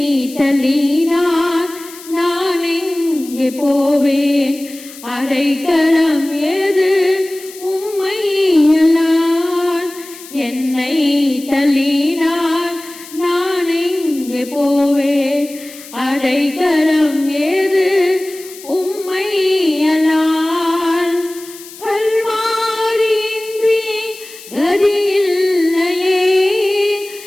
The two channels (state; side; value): noise; left; hiss, 17 dB below the sound